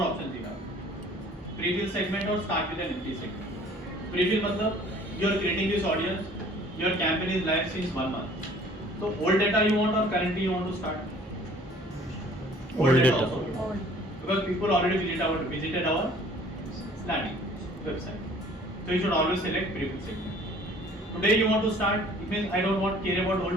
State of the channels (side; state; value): both; normal; correlation 0.53